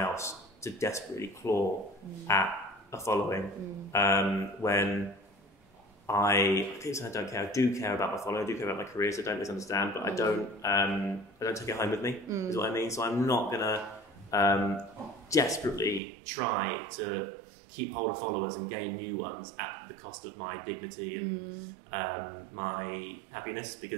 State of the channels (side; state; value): left; drops out; at 16.0 s